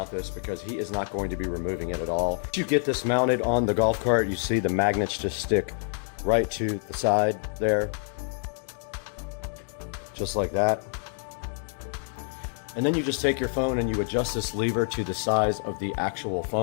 this because he is not going to be removing it at all. Once you get this mounted on the golf cart, you see the magnets just stick right to the side there. Just like that. And then you just take your phone and you adjust this lever to the size of the actual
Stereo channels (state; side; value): silent; right; 60 dB below the other